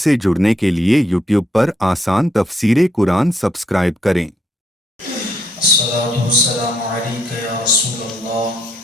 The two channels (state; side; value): normal; both; correlation 0.73